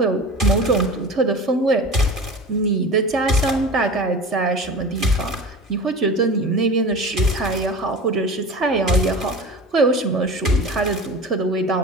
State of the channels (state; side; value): normal; both; correlation 0.34